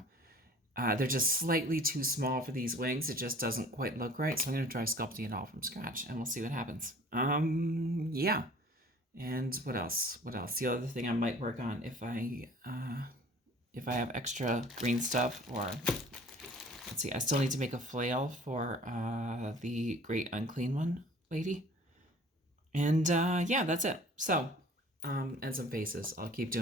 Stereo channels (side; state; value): both; normal; correlation 0.49